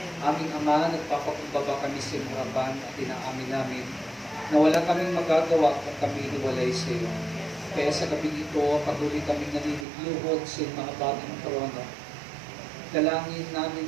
Aming Ama, nagpapakumbaba kami sa iyong harapan at inaamin namin na wala kaming magagawa kung kami hiwalay sa iyo. Kaya sa gabi ito, patuloy kaming naniniluhod sa iyong mga bagong trono. Dalangin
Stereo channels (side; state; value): left; drops out; at 9.9 s